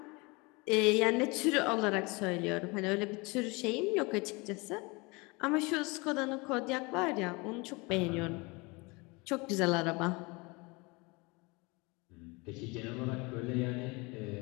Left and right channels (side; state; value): right; quieter; 26.7 dB